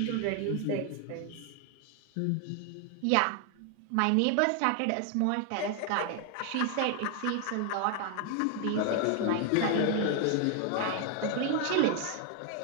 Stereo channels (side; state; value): both; different; correlation 0.00